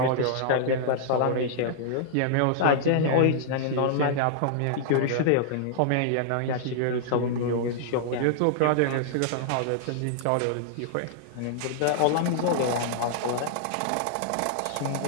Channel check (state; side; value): different; both; correlation -0.01